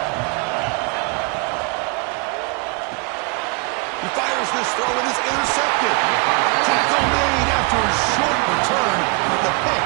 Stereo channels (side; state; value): left; quieter; 30.7 dB